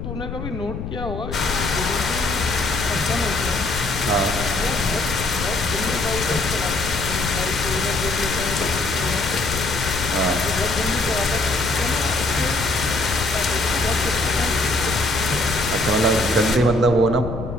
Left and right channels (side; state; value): left; noise; rumble, 6 dB below the sound